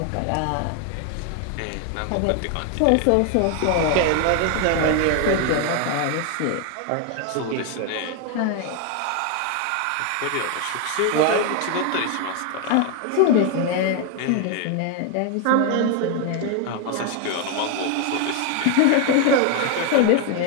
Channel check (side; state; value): both; different; correlation 0.01